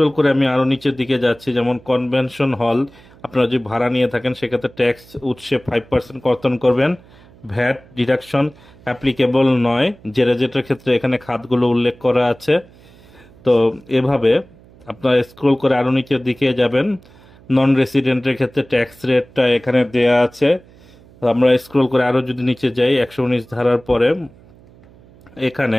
করে আমি আরও নিচের দিকে যাচ্ছি, যেমন কনভেনশন হল, আপনারা যদি ভাড়া নিয়ে থাকেন সেক্ষেত্রে ট্যাক্স উৎসে 5% কর্তন করবেন, ভ্যাট ডিডাকশন অ্যাপ্লিকেবল নয়, জেরেজেটের ক্ষেত্রে এখানে খাতগুলো উল্লেখ করা আছে। তো এভাবে আপনারা স্ক্রল করে আরও নিচের দিকে যাবেন। নন রেসিডেন্টের ক্ষেত্রে ট্যাক্স রেটটা এখানে দেয়া আছে। আমরা স্ক্রল করে আরও যদি নিচে যাই 119 ধারার পরে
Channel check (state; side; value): noise; right; hum, 25 dB below the sound